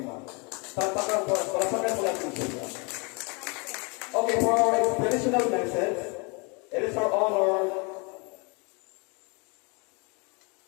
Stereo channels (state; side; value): quieter; right; 31.9 dB